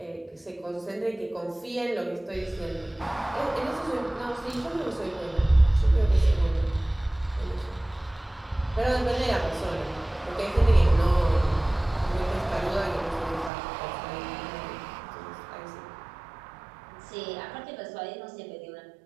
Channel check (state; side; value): drops out; left; at 13.5 s